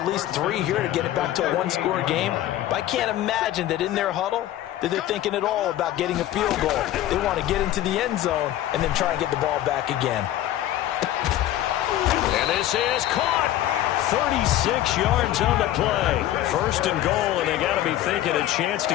least 3 here to get it back to a 1-score game. But I can't imagine that in their huddle that they're thinking at all about getting a field goal. They want to get into the end zone and then try and get the ball back again. And this is caught. 36 yards on the play. First and goal, and they got to be thinking a chance to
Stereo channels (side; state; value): right; quieter; 13.3 dB